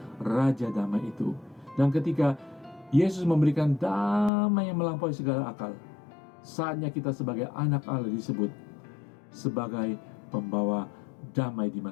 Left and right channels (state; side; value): drops out; right; at 4.3 s